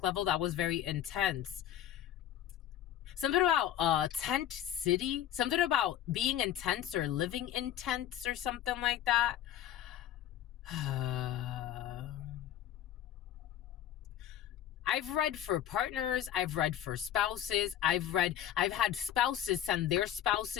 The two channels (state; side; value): quieter; right; 11.3 dB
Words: level, that was very intense. Something about tent city, something about being intense or living in tents or something like that. I've read for partners, I've read for spouses, I've had spouses send their